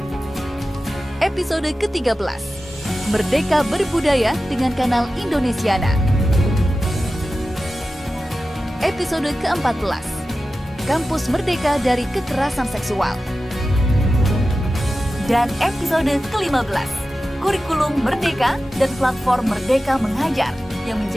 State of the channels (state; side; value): normal; both; correlation 0.94